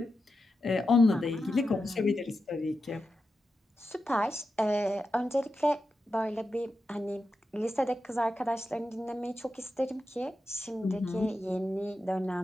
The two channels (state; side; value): normal; both; correlation 0.89